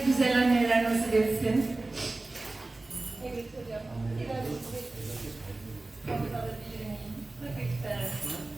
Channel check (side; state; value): left; quieter; 3.1 dB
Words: güzel anneler nasip etsin. Evet hocam. Biraz alabilir miyim?